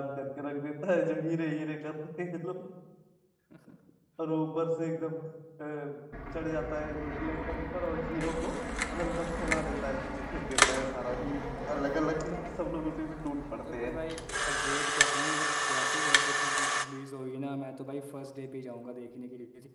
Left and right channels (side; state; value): both; identical; correlation 1.00